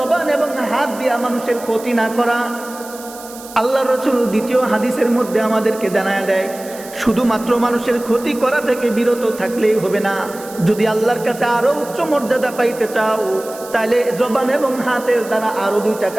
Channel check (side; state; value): right; noise; hiss, 17 dB below the sound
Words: এবং হাত দিয়া মানুষের ক্ষতি না করা। আল্লাহ রসুল দ্বিতীয় হাদিসের মধ্যে আমাদেরকে জানায় দেয়, শুধুমাত্র মানুষের ক্ষতি করা থেকে বিরত থাকলেই হবে না, যদি আল্লাহর কাছে আরো উচ্চ মর্যাদা পাইতে চাও তাহলে জবান এবং হাতের দ্বারা আরো দুইটা